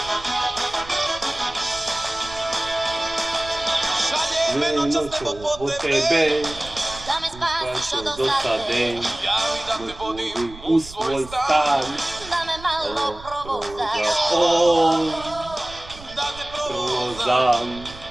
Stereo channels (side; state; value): right; noise; rumble, 17 dB below the sound